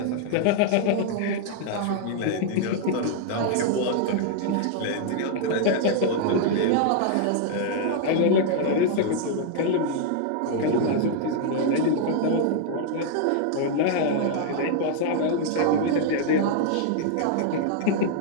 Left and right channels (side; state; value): both; different; correlation -0.01